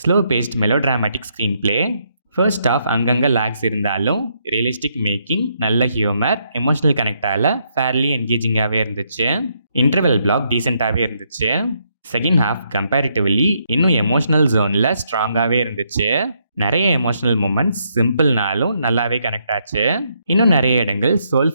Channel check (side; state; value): both; inverted; correlation -0.75